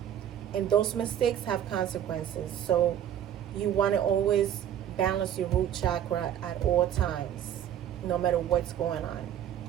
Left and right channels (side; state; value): left; quieter; 10.3 dB